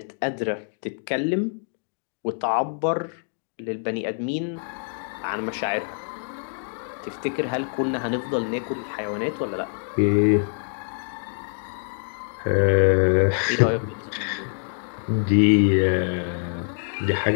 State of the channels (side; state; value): right; silent; 62 dB below the other